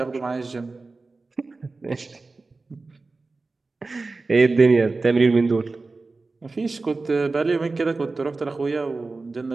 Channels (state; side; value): quieter; left; 3.7 dB